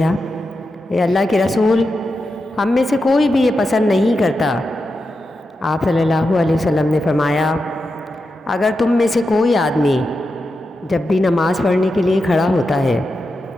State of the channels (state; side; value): normal; both; correlation 0.89